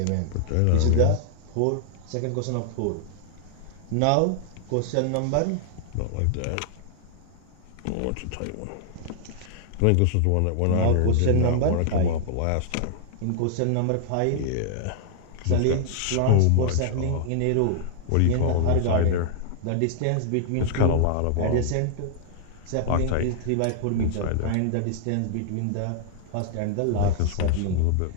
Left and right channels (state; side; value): different; both; correlation -0.01